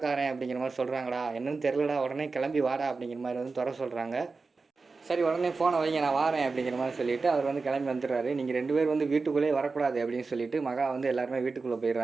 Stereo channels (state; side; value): quieter; left; 4.2 dB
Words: அப்படிங்கிற மாதிரி சொல்கிறாங்கடா, என்னன்னு தெரிலடா, உடனே கிளம்பி வாடா அப்படிங்கிற மாதிரி வந்து துறை சொல்கிறாங்க. சரி உடனே ஃபோனை வைங்க நான் வாரேன் அப்படிங்கிற மாதிரி சொல்லிவிட்டு அவர் வந்து கிளம்பி வந்துடுறாரு. நீங்கள் 2 பேர் வந்து வீட்டுக்குள்ளேயே வரக்கூடாது அப்படின்னு சொல்லிட்டு மகா வந்து எல்லாருமே வீட்டுக்குள்ளே